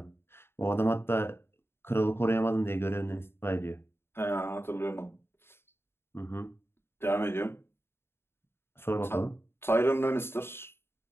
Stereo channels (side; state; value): right; late; 0.11 ms